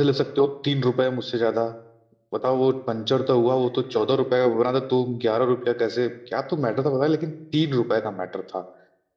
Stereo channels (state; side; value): identical; both; correlation 1.00